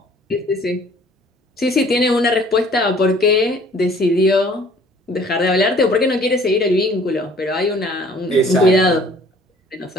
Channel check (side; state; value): both; normal; correlation 0.54